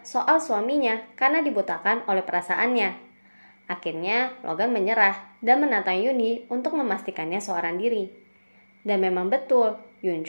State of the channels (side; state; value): both; inverted; correlation -1.00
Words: soal suaminya karena dibutakan oleh perasaannya. Akhirnya Logan menyerah dan menantang Yoonhee untuk memastikannya seorang diri. Dan memang betul,